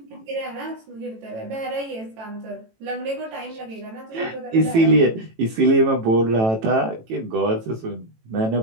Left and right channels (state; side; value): late; left; 18 ms